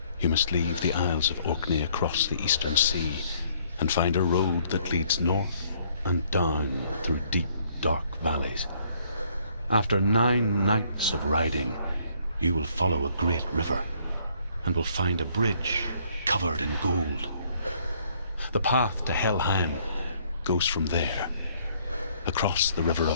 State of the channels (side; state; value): both; inverted; correlation -0.64